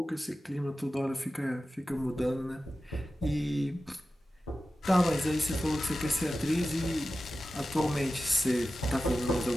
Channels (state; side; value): normal; both; correlation 0.94